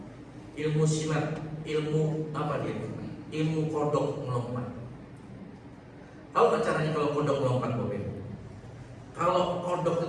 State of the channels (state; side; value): identical; both; correlation 1.00